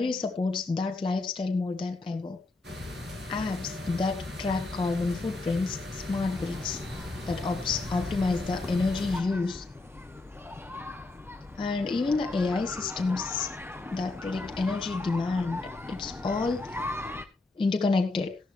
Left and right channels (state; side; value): quieter; right; 3.3 dB